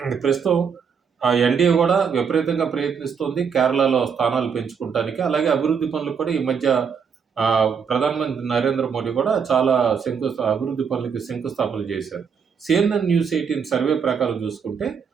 ప్రస్తుతం ఎన్‌డీఏ కూడా విపరీతంగా ప్రయత్నిస్తోంది కేరళలో స్థానాలు పెంచుకుంటానికి. అలాగే అభివృద్ధి పనులు కూడా ఈ మధ్య ప్రధానమంత్రి నరేంద్ర మోడీ కూడా చాలా అభివృద్ధి పనులకి శంకుస్థాపనలు చేశారు. సీఎన్ఎన్ న్యూస్ 18 సర్వే ప్రకారం చూసుకుంటే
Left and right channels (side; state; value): left; quieter; 6.5 dB